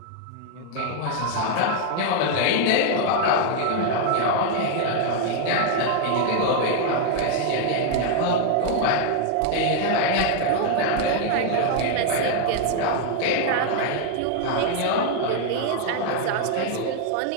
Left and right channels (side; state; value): both; different; correlation 0.00